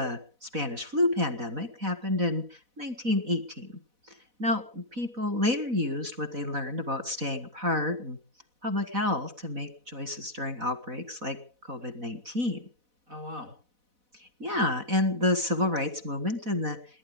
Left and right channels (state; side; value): late; left; 4.0 ms